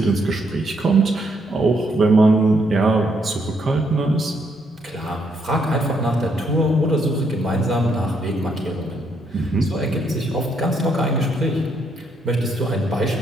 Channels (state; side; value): normal; both; correlation 0.74